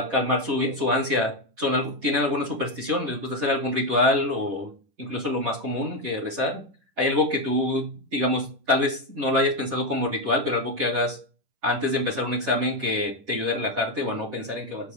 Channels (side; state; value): left; late; 10 ms